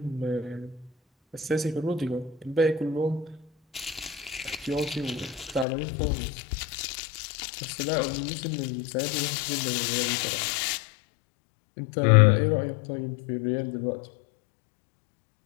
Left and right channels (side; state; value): right; drops out; at 5.7 s